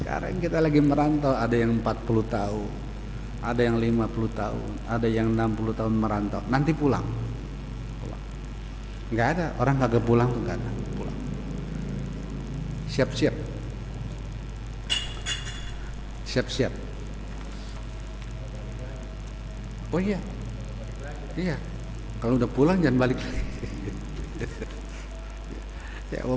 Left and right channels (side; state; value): both; identical; correlation 1.00